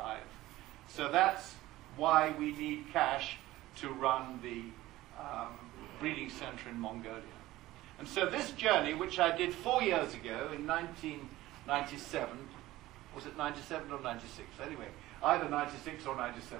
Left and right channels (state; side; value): quieter; left; 16.8 dB